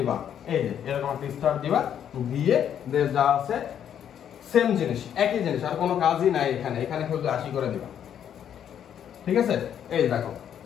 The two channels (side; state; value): right; quieter; 9.3 dB